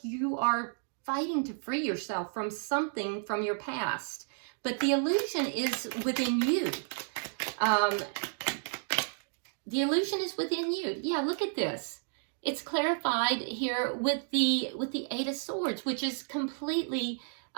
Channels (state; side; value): silent; left; digital silence